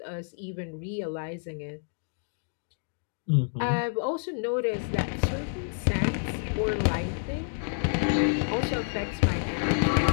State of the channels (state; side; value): silent; right; digital silence